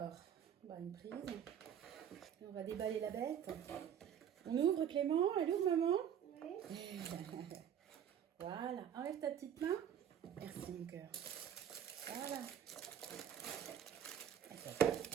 bah, une prise. Et on va déballer la bête. On ouvre Clément. Elle ouvre maman? Oui. Voilà. Enlève ta petite main. Merci mon cœur. Voilà.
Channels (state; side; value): quieter; left; 9.2 dB